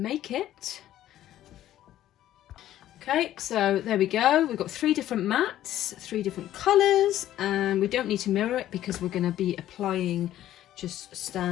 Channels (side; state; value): right; quieter; 12.9 dB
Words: It. Okay, so there we go. We've got 3 different mats, 3 different colours, and we don't need to mirror it because we're going to be applying just